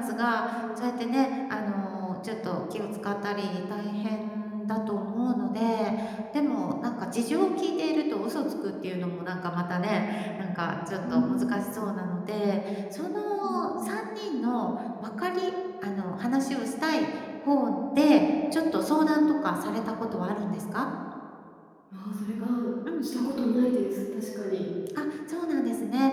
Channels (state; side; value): identical; both; correlation 1.00